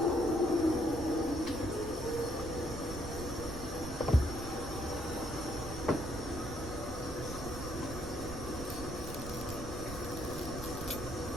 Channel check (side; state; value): right; noise; rumble, 8 dB below the sound